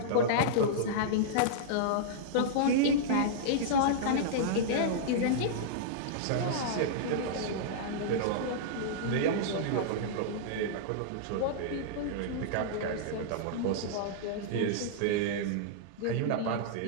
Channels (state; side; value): different; both; correlation -0.02